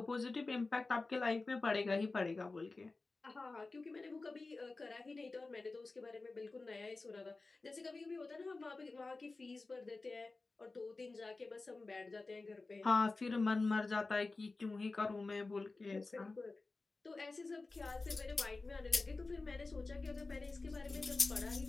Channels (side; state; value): right; quieter; 3.6 dB